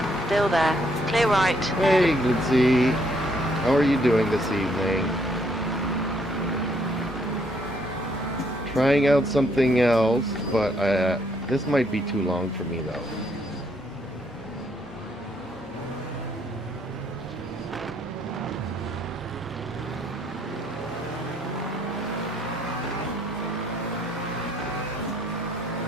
Still there. Clear right. Hey, Glitzy. How are you doing this evening? Trying out something else, but this might be too long for me, though.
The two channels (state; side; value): normal; both; correlation 0.70